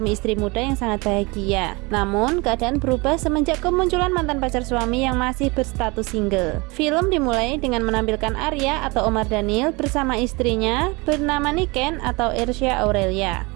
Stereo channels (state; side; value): quieter; left; 26.1 dB